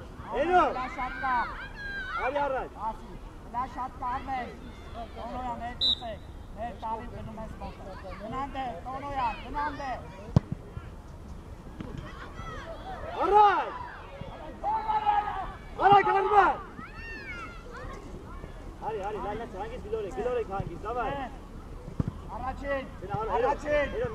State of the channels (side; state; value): both; identical; correlation 1.00